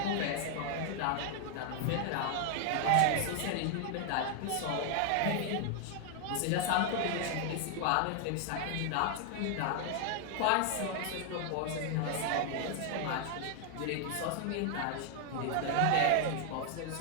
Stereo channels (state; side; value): different; both; correlation 0.00